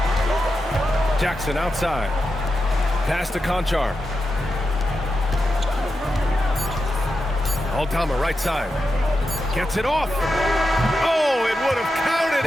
Jackson outside. Pass to Conchar. Aldama right side. Gets it off. Oh, it would have counted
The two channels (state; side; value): normal; both; correlation 0.88